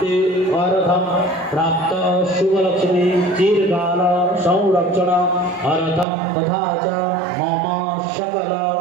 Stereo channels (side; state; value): left; drops out; at 6.1 s